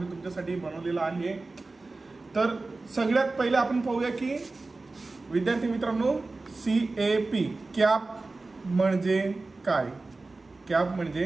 तुमच्यासाठी बनवलेला आहे। तर सगळ्यात पहिले आपण पाहूया की विद्यार्थी मित्रांनो CAP कॅप म्हणजे काय। कॅप म्हणजे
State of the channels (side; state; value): left; quieter; 3.4 dB